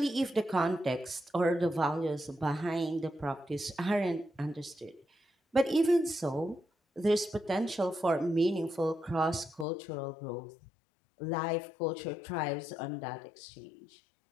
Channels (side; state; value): right; drops out; at 9.7 s